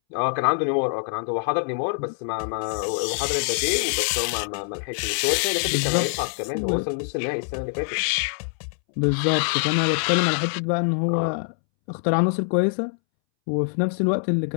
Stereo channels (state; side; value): silent; right; 62 dB below the other